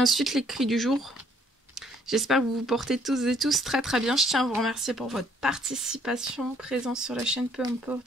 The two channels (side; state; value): both; normal; correlation 0.64